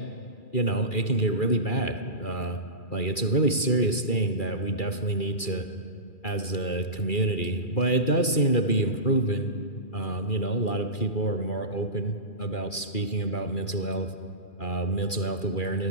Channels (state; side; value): late; right; 2.4 ms